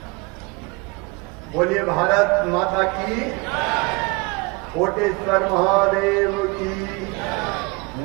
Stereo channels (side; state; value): left; quieter; 27.8 dB